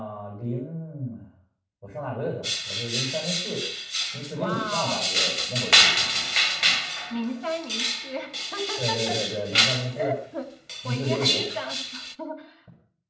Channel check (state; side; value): identical; both; correlation 1.00